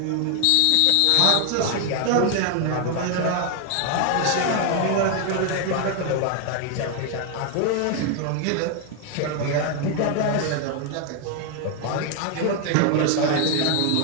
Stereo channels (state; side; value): different; both; correlation 0.00